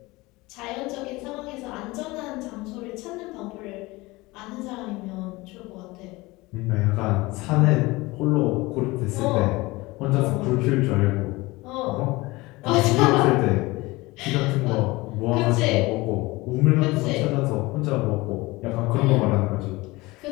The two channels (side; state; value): right; quieter; 21.7 dB